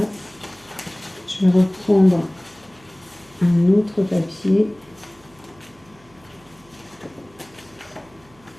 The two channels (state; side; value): noise; right; hum, 29 dB below the sound